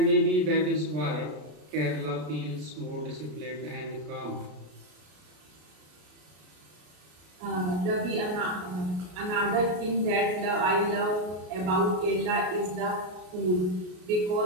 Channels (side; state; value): left; late; 33 ms